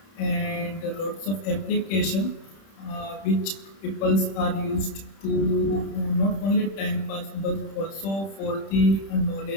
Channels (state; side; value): late; right; 31 ms